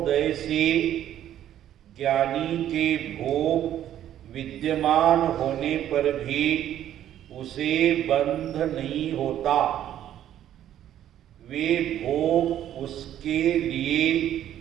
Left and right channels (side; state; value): left; quieter; 11.4 dB